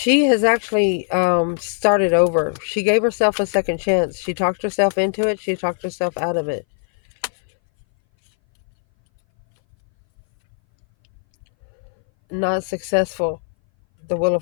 has actually started over. She gave herself a second chance. She talked herself into it. She talked herself out of it. not successful. The Wheel of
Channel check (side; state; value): right; silent; 61 dB below the other